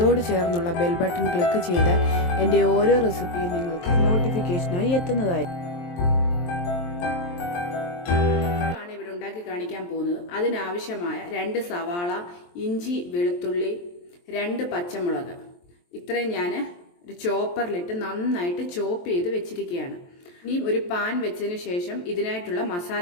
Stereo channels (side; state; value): right; late; 23 ms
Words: ചേർന്നുള്ള ബെൽ ബട്ടൺ ക്ലിക്ക് ചെയ്താൽ എൻ്റെ ഓരോ റെസിപ്പിയും നിങ്ങൾക്ക് നോട്ടിഫിക്കേഷനായി എത്തുന്നതായിരിക്കും. ഇവിടെ ഉണ്ടാക്കി കാണിക്കാൻ പോകുന്നത്. അതിനാവശ്യമായ 2 സവാള, ഇഞ്ചി, വെളുത്തുള്ളി, 2 പച്ചമുളക്, ഇത്രയും ഞാൻ ഒരു ചോപ്പറിലിട്ട് നന്നായിട്ട് ചോപ്പ് ചെയ്ത് വെച്ചിരിക്കുകയാണ്. ഇനി ഒരു പാൻ വെച്ചതിന് ശേഷം ഇതിനായിട്ടുള്ള